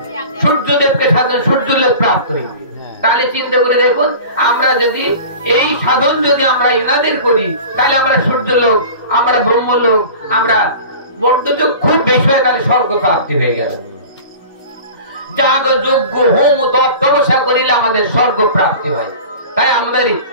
সূর্যদেবকে সাধন, সূর্য লোক প্রাপ্ত হইবে। তাহলে চিন্তা করে দেখুন, আমরা যদি এই সাধন যদি আমরা ইনাদের করি, তাহলে আমরা সূর্য লোক, আমরা ব্রহ্মলোক, আমরা বর্ধযোগ খুব বেশি হয়, তাহলে স্বর্গ প্রাপ্তি হয়ে গেল। যাগ যজ্ঞ হোম তপ তপস্যা করিলে আমাদের স্বর্গ প্রাপ্তি হয়। তাই আমাদের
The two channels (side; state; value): both; inverted; correlation -0.38